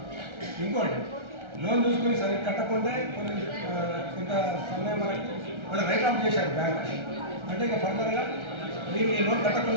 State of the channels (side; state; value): left; late; 1.3 ms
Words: ఇంకోటి, లోన్ చూసుకొని సరి కట్టకుండా కొంత సమయం వరకు వాళ్ళు రైట్ ఆఫ్ చేశారు బ్యాంక్. అంటే ఇక ఫర్దర్గా మీరు ఈ లోన్